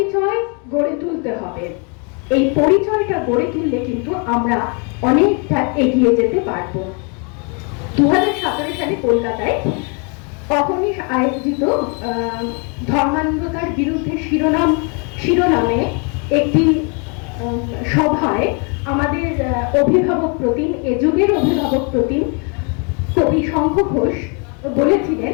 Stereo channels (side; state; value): right; quieter; 35.8 dB